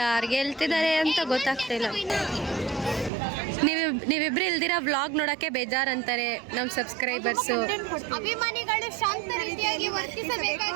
ಗೆಲ್ತಿದ್ದಾರೆ ಅಂತ ಗೊತ್ತಾಗ್ತಿಲ್ಲ. ನೀವಿಬ್ರು ಇಲ್ದಿರ ವ್ಲಾಗ್ ನೋಡಕ್ಕೆ ಬೇಜಾರಂತಾರೆ ನಮ್ಮ ಸಬ್ಸ್ಕ್ರೈಬರ್ಸು. ಅಭಿಮಾನಿಗಳು ಶಾಂತ ರೀತಿಯಾಗಿ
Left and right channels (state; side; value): drops out; left; at 3.1 s